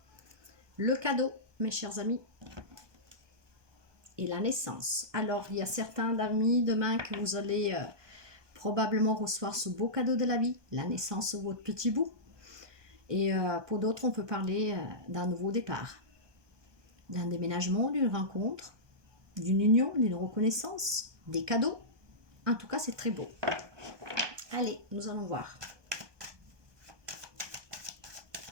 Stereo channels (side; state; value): left; late; 1.2 ms